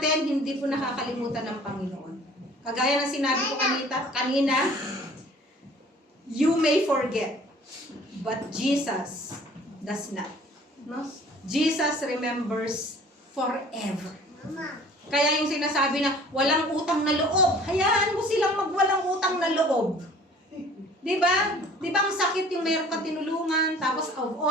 hindi po nakakalimutan ng Panginoon. Kagaya ng sinabi ko kanina, you may forget, but Jesus does not. No? Jesus remembers forever. Kaya yung sinasabi na walang utang na loob, hayaan mo silang magwalang utang na loob. Di ba? Di ba ang sakit yung meron ka tinulungan, tapos of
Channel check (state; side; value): normal; both; correlation 0.50